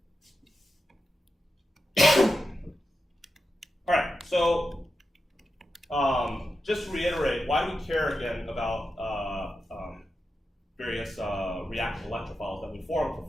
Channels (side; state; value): both; normal; correlation 0.90